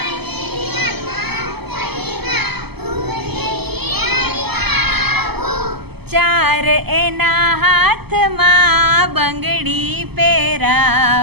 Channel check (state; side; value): late; left; 0.97 ms